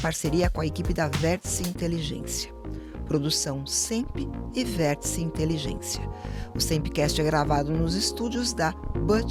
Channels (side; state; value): both; identical; correlation 1.00